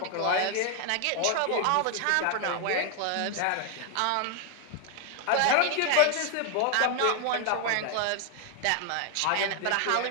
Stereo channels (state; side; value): different; both; correlation 0.00